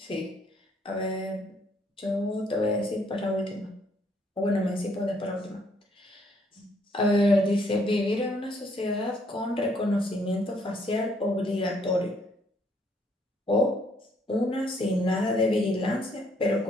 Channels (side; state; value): both; normal; correlation 0.68